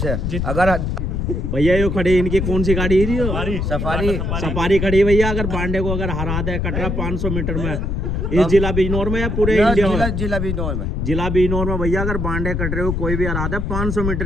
अगर भैया ये खड़ी इनकी कौन सी गाड़ी है जी? सफारी सफारी खड़ी है भैया। अगर बांडे को अगर हरा दे कटरा 500 मीटर में इस जिला बिजनौर में या पूरे इंडिया में? जिला बिजनौर में। जिला बिजनौर में भैया अगर बांडे कट रहे हो कोई भी हरा दे 500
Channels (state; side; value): noise; left; rumble, 1 dB below the sound